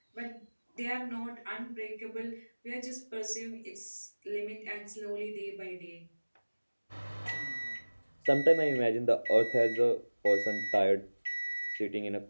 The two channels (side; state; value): both; inverted; correlation -1.00